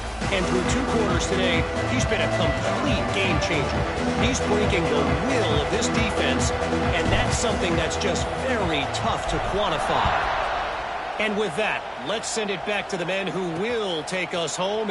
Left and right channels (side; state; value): both; identical; correlation 1.00